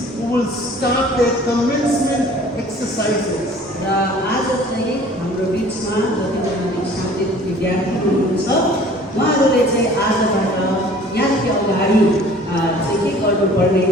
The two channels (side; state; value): both; normal; correlation 0.50